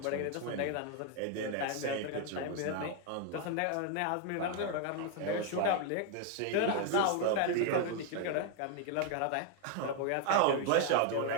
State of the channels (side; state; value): both; different; correlation 0.01